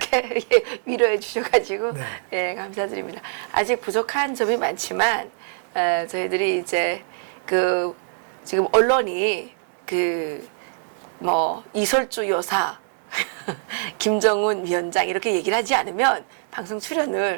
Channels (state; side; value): silent; left; digital silence